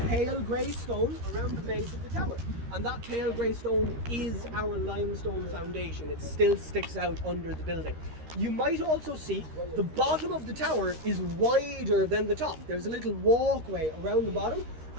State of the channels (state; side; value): late; left; 13 ms